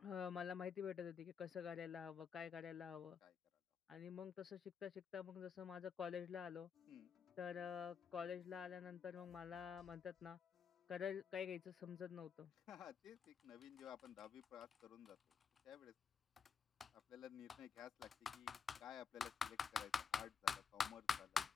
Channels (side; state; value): right; quieter; 6.7 dB